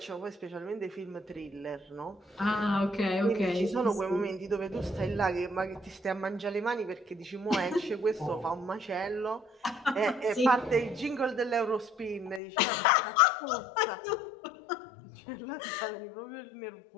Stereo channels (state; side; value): drops out; right; at 12.4 s